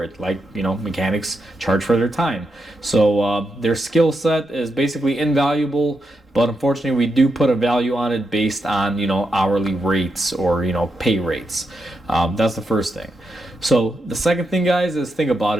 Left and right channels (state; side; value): normal; both; correlation 0.84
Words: it, like mechanics charge for their time. So their skill set is basically invaluable, but unfortunately we do put a value on it based on hourly rates or pay rates. That's the first thing. So the second thing, guys, is think about